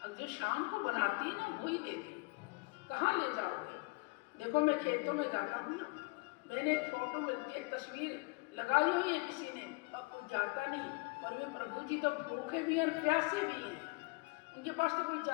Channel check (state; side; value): quieter; right; 27.9 dB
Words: अब जो शाम को बनाती है ना वही दे दे, कहाँ ले जाओगे? देखो मैं खेतों में जाता हूँ ना, मैंने एक फोटो मिलती है, एक तस्वीर लगाई हुई है किसी ने, अब कोई जाता नहीं, पर वे प्रभु जी तो भूखे भी हैं, प्यासे भी हैं, उनके पास तो कोई